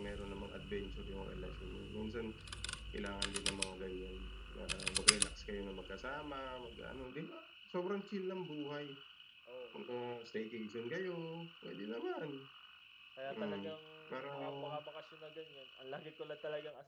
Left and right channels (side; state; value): both; identical; correlation 1.00